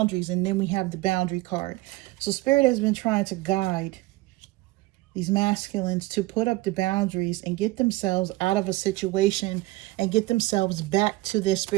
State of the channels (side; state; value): left; quieter; 19.6 dB